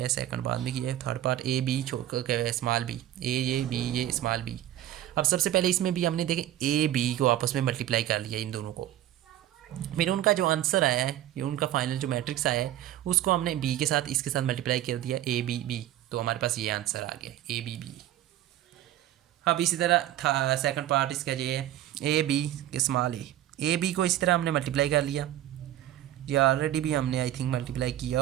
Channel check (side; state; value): left; quieter; 12.9 dB